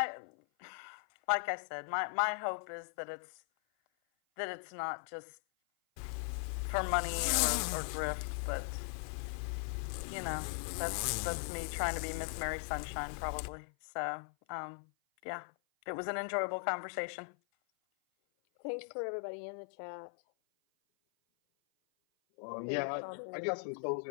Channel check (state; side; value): silent; right; 52 dB below the other